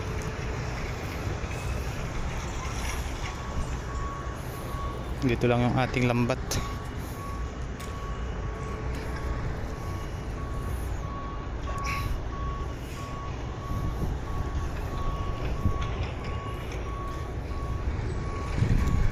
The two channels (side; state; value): both; identical; correlation 1.00